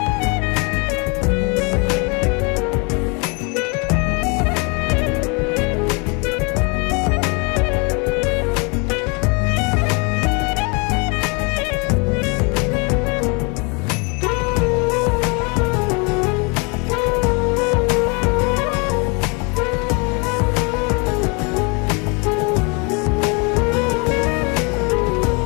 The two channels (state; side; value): quieter; right; 31.8 dB